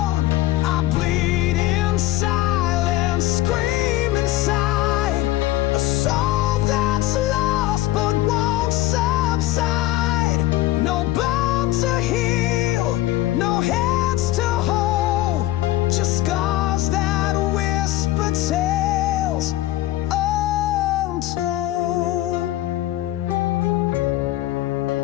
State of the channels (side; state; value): right; quieter; 15.7 dB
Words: I bleed in silence, scream inside, a soul that's lost but won't subside. No bound to heal, no hands to hold, just scars that whisper tales untold.